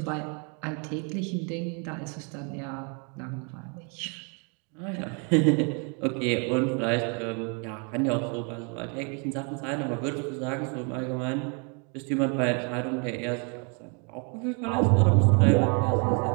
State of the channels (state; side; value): quieter; left; 36.3 dB